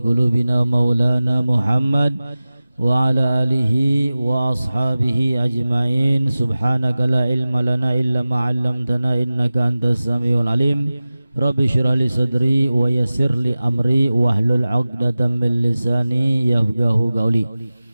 qulubina maulana Muhammad wa ala alihi wa ashabihi ajma'in. Subhanaka la ilma lana illa ma 'allamtana innaka antas samiul alim. Rabbi shrah li sadri wa yassir li amri wahlul 'uqdatam min lisani yafqahu qawli.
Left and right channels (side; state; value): both; inverted; correlation -0.96